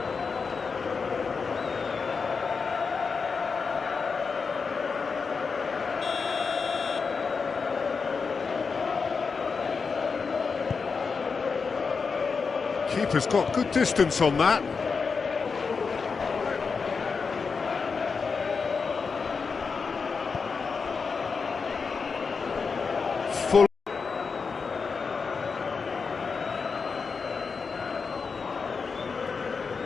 Keeper's got good distance on that. Full.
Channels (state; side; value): quieter; right; 5.1 dB